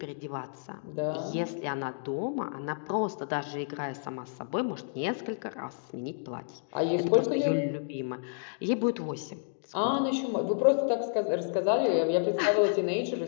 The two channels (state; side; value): silent; right; digital silence